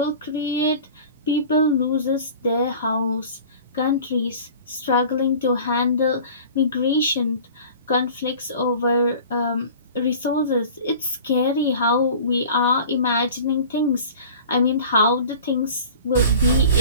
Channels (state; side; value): inverted; both; correlation -0.41